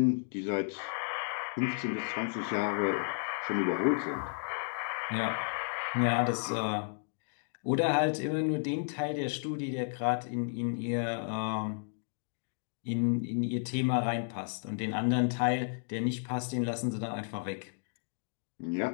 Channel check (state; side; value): silent; right; digital silence